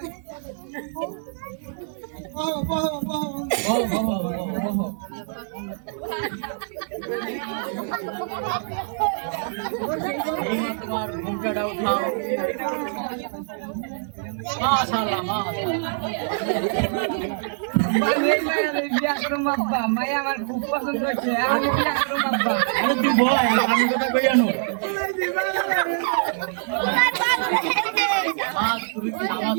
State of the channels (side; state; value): left; silent; digital silence